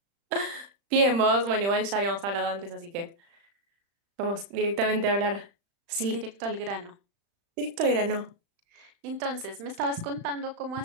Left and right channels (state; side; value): late; left; 35 ms